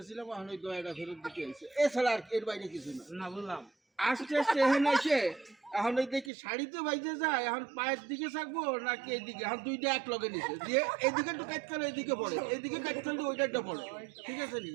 এখন ওই দয়াটা ফেরত দিতে হয়েছে এছাড়া আর এর বাইরে কিছু না না বললাম আস্তে আস্তে এখানে এসে এখন ওই দেখি শাড়িতে বাইজে যায় এখন পায়ের দিকে থাকবো নাকি এইদিকে এখন দুইটা এক লগে নিছে দিয়ে এইদিকে একটু কাজ করলে এইদিকে পড়ে এইদিকে কাজ করলে ওইটা একটা পড়ে ঠিক আছে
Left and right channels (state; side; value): drops out; left; at 6.3 s